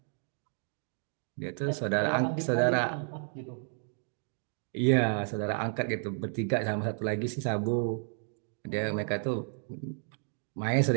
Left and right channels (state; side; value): silent; left; 57 dB below the other